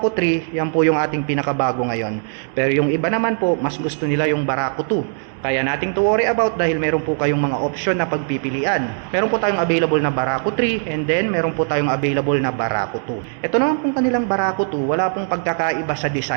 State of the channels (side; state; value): left; silent; digital silence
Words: 3, yan po yung ating pinakabago ngayon. Pero yung iba naman po, mas gusto nila yung Barako 2. Kaya nating to worry about dahil meron po kayong mga option na pagpipilian. Meron po tayong available na Barako 3 and then meron po tayong available na Barako 2. Ito naman pong kanilang Barako 2, wala pong pagkakaiba sa